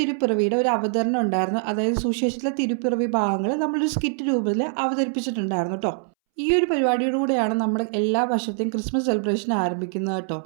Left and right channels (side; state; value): left; silent; 63 dB below the other